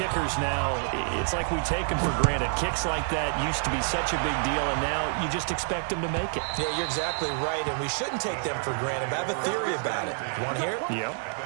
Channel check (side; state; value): left; silent; 59 dB below the other